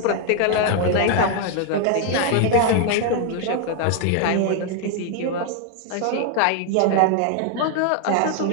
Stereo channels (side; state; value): both; different; correlation 0.00